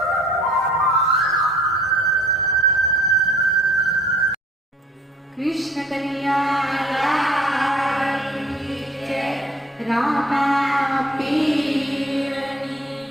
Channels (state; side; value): normal; both; correlation 0.55